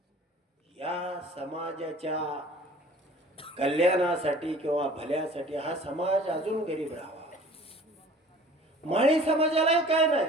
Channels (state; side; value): normal; both; correlation 0.47